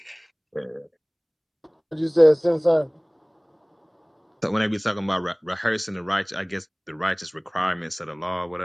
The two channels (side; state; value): both; identical; correlation 1.00